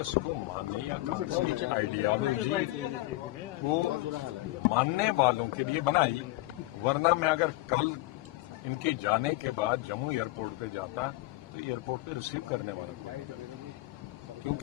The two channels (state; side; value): quieter; right; 19.6 dB